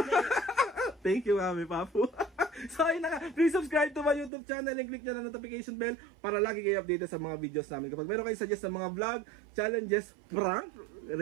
Thank you, Mami Papu. So, ayun na nga. Please subscribe to my YouTube channel and click nyo na notification bell para lagi kayo updated sa mga videos namin. Kapag meron kayo suggest ng mga vlog, challenges, prank,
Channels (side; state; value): left; drops out; at 4.3 s